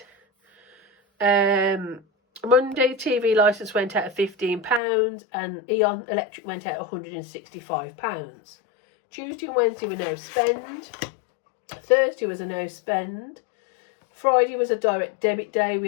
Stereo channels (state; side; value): drops out; right; at 4.8 s